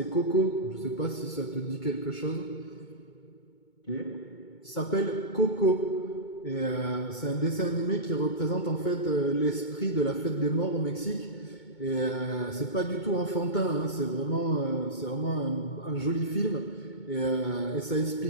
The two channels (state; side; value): late; right; 2.2 ms